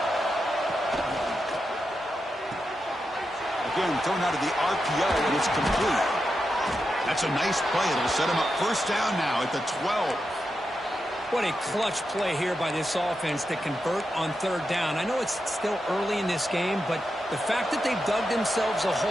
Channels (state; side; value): normal; both; correlation 0.88